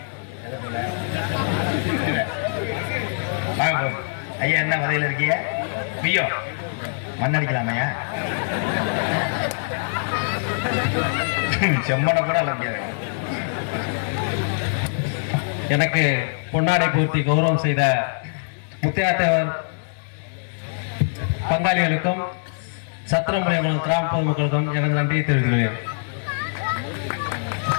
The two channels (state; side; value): silent; right; digital silence